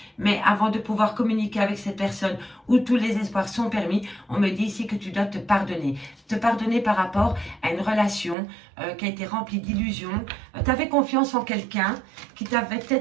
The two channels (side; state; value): left; drops out; at 8.3 s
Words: Mais avant de pouvoir communiquer avec cette personne où tous les espoirs sont permis, on me dit ici que tu dois te pardonner. Te pardonner par rapport à une relation qui a été remplie d'illusions. Tu avais confiance en quelqu'un qui t'avait